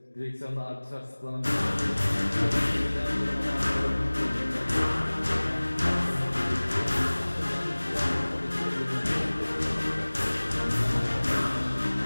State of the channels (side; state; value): both; inverted; correlation -1.00